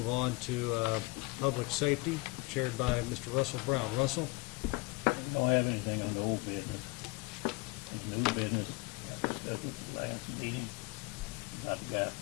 on to public safety, chaired by Mr. Russell Brown. Russell? Don't have anything on the old business. This new business, I discussed with the last meeting, about the guy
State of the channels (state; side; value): quieter; right; 24.8 dB